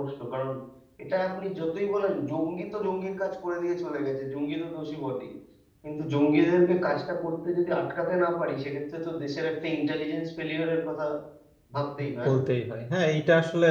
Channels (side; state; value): both; identical; correlation 1.00